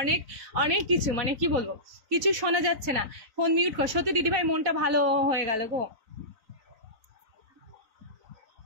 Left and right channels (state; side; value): late; left; 3.9 ms